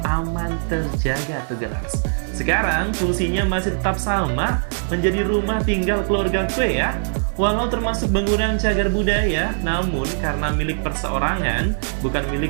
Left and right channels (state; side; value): silent; left; 56 dB below the other